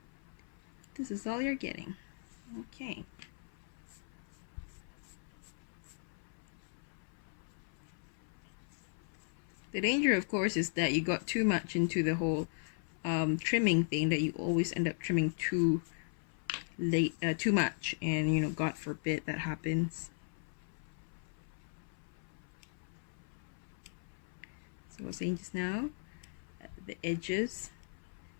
this is all you're getting. Okay. The danger, of course, is that you got too much into the whole trimming thing, that you always end up trimming too late, too much, and you know, God forbid that happens. So I was saying just now, the edges,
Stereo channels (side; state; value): right; silent; 53 dB below the other